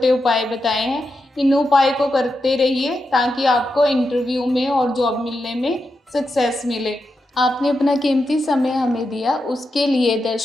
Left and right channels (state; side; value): normal; both; correlation 0.87